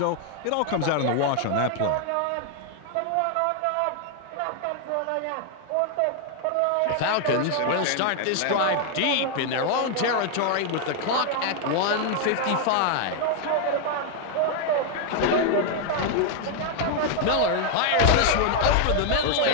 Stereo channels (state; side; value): different; both; correlation 0.00